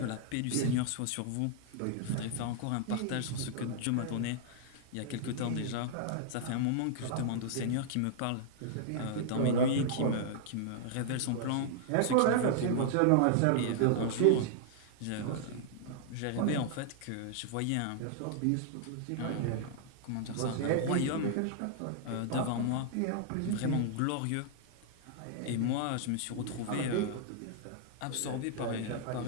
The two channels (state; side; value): different; both; correlation -0.01